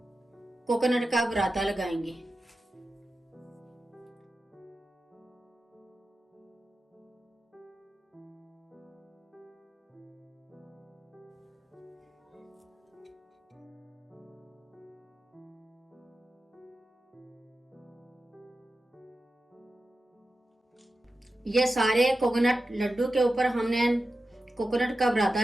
कोकोनट का बुरादा लगाएंगे। ये सारे कोकोनट लड्डू के ऊपर हमने कोकोनट का बुरादा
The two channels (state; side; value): normal; both; correlation 0.92